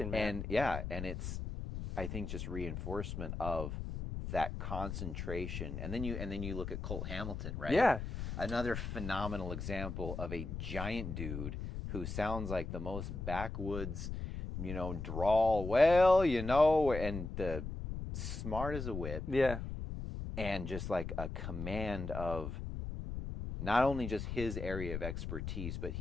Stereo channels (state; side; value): noise; left; rumble, 5 dB below the sound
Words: man. And it's, I think, just reinforcement of that concentration. And then you look at Colt Hamilton, right? Yeah. Another phenomenal example of a giant dude who sounds like the most backwoods, drawl, and the smart as a whip. Yeah. And just a command of not only just his area of expertise, but